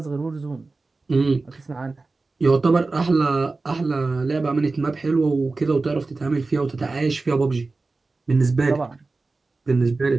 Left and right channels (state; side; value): quieter; left; 3.6 dB